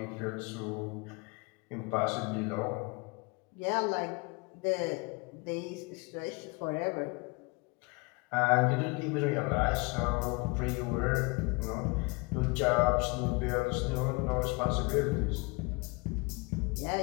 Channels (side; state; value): right; quieter; 28.6 dB